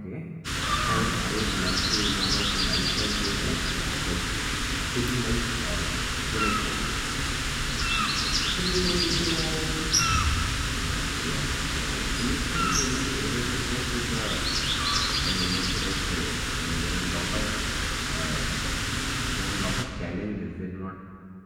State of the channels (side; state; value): both; identical; correlation 1.00